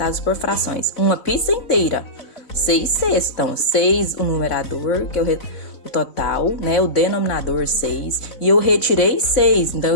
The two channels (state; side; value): late; right; 4.0 ms